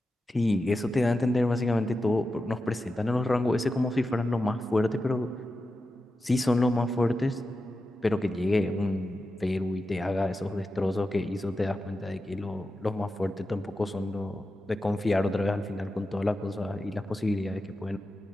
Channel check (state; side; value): normal; both; correlation 0.91